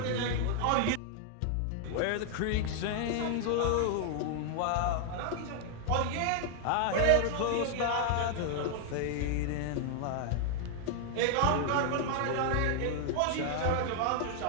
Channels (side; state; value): both; different; correlation 0.00